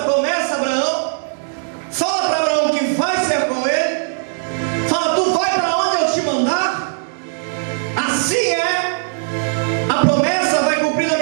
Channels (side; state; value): left; silent; 63 dB below the other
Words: promessa a Abraão, fala para Abraão que vai ser com ele, fala, tu vai para onde eu te mandar. Assim é, a promessa vai cumprir na